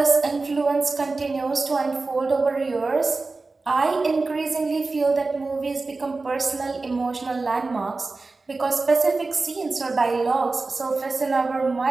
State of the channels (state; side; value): quieter; left; 3.7 dB